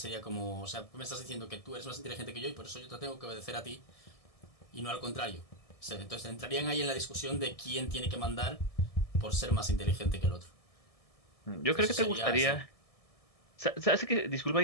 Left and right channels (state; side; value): late; right; 1.6 ms